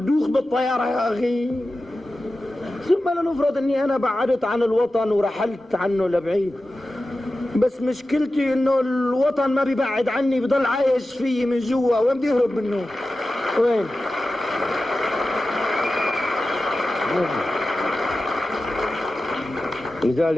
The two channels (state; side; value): normal; both; correlation 0.93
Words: بالطيارة يا أخي. ثم لنفرض أني أنا بعدت عن الوطن ورحلت عنه لبعيد، بس مشكلتي إنه الوطن ما بيبعد عني، بضل عايش فيي من جوا. وين بدي أهرب منه؟ وين؟